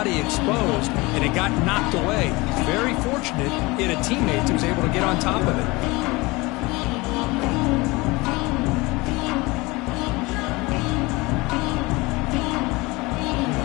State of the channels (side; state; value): right; quieter; 23.4 dB